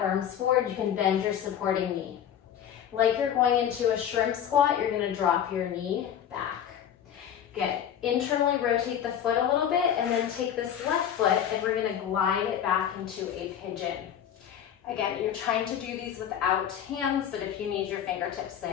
arms forward. You can bend your supporting knee. Like you're going into a shrimp squat, you're gonna drop your knee back. Good. Internally rotate the foot a little bit and then take this left foot and we're gonna glide it back into a pigeon. Again, you're trying to do these without hands, but if you need your fingertips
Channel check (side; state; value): right; quieter; 9.5 dB